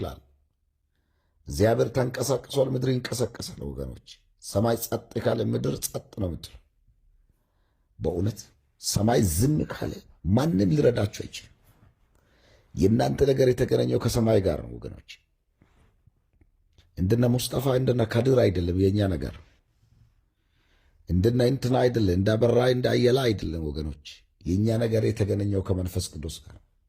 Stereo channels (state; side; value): identical; both; correlation 1.00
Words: እግዚአብሔር ተንቀሳቅሷል፣ ምድር ይንቀሳቀሳል። ወገኖች ሰማይ ጸጥ ካለ ምድር ጸጥ ነው የምትለው። በእውነት ሰማይ ዝም ካለ ማንም ሊረዳችሁ አይችልም። የእናንተ ነገር የተገናኘው ከሰማይ ጋር ነው ወገኖች። እንደነ ሙስጠፋ እንደነ ካድር አይደለም የእኛ ነገር። እንደነ እንትና አይደለም፣ እንዳበራ እንዳየላ አይደለም ወገኖች። የእኛ ነገር የተገናኘው ከመንፈስ ቅዱስ ጋር